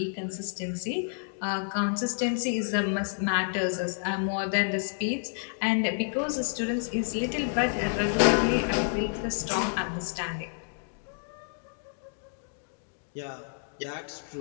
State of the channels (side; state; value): right; silent; digital silence